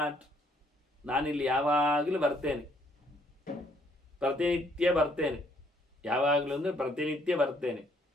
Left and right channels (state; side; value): normal; both; correlation 0.67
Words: ನಾನಿಲ್ಲಿ ಯಾವಾಗಲೂ ಬರ್ತೇನೆ, ಪ್ರತಿನಿತ್ಯ ಬರ್ತೇನೆ. ಯಾವಾಗಲೂ ಅಂದರೆ ಪ್ರತಿನಿತ್ಯ ಬರ್ತೇನೆ.